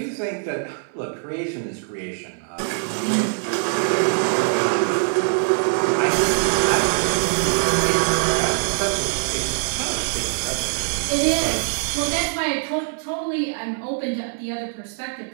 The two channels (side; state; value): left; silent; 64 dB below the other